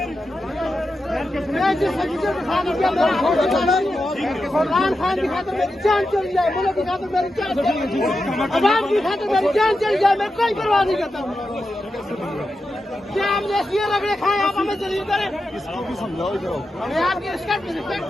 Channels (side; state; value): both; normal; correlation 0.89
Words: इमरान खान की खातिर मेरी जान चली जाए, मुल्क की खातिर मेरी जान चली जाए, अवाम की खातिर मेरी जान चली जाए, मैं कोई परवाह नहीं करता हूँ। क्या आप ये रगड़े खाए, आप हमें जलील करें? मैं आपकी रिस्पेक्ट